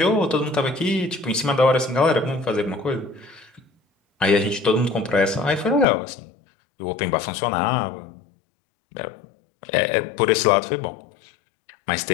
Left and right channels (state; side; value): drops out; right; at 5.9 s